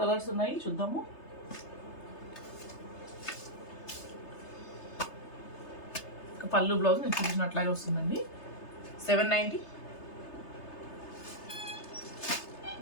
కలర్స్ ఉన్నాయి, చూద్దాము. పళ్ళు బ్లౌజ్ నేను చూపించినట్లాగే వస్తుందండి. 790.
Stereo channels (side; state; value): right; late; 3.3 ms